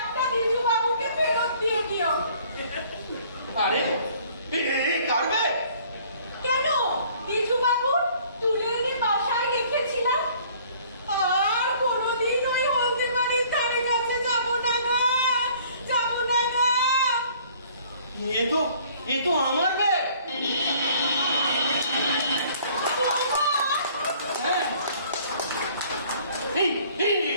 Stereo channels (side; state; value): both; inverted; correlation -0.56